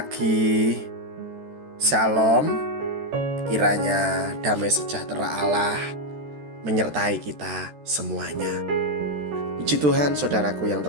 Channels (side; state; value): left; late; 13 ms